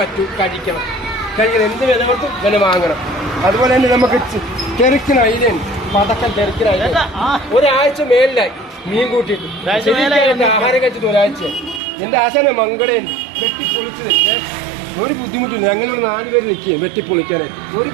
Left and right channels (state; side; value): drops out; left; at 11.8 s